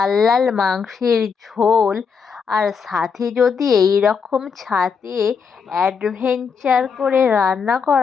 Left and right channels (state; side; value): quieter; right; 6.0 dB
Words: লাল মাংসের ঝোল, আর সাথে যদি এই রকম ছাদে অ্যাডভেঞ্চার করে রান্না